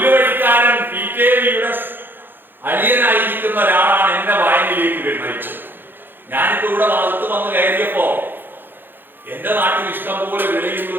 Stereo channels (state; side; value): late; left; 0.097 ms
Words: PKV-യുടെ അളിയനായിരിക്കുന്ന ഒരാളാണ് എന്റെ വായനയിലേക്ക് നയിച്ചത്. ഞാനിപ്പോ ഇവിടെ ഭാഗത്ത് വന്ന് കയറിയപ്പോ എന്റെ നാട്ടിൽ ഇഷ്ടംപോലെ വിളയുന്ന